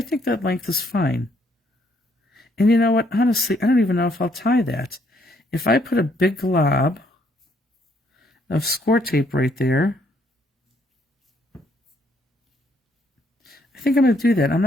think that length is fine. And you know what, honestly, I don't even know if I'll tie that. If I put a big glob of score tape right there, I think I'm going to do that. I'm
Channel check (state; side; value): normal; both; correlation 0.69